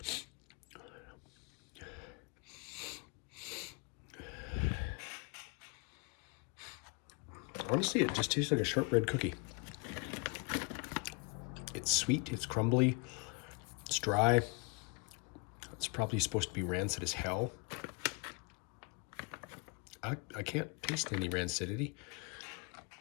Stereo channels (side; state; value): right; quieter; 29.8 dB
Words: honestly, it just tastes like a shortbread cookie. It's sweet, it's crumbly, it's dry. It's probably supposed to be rancid as hell. I can't taste any rancidity.